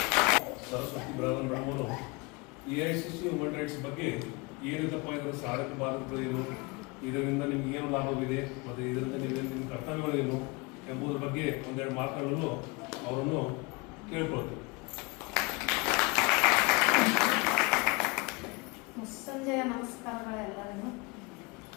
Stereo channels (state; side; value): quieter; right; 26.1 dB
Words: ಸರಸ್ವತಿ ಬಿರಾದರ್ ಮೇಡಮ್ ಅವರು AICC ವುಮನ್ ರೈಟ್ಸ್ ಬಗ್ಗೆ ಏನಿದಪ್ಪ ಇದರ ಸಾಧಕ ಬಾಧಕಗಳೇನು, ಇದರಿಂದ ನಿಮ್ಗೆ ಏನು ಲಾಭವಿದೆ ಮತ್ತು ಇದರಿಂದ ನಿಮ್ಮ ಕರ್ತವ್ಯಗಳೇನು ಎಂಬುದರ ಬಗ್ಗೆ ಒಂದೆರಡು ಮಾತುಗಳನ್ನು ಅವರನ್ನು ಕೇಳ್ಕೊಳ್ತೇವೆ. ಸಂಜೆಯ ನಮಸ್ಕಾರಗಳೆಲ್ಲರಿಗೂ.